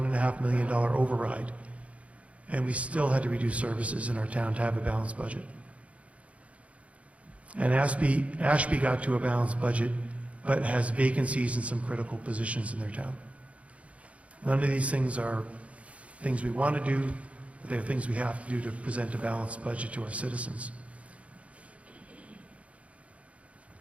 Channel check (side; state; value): left; late; 0.064 ms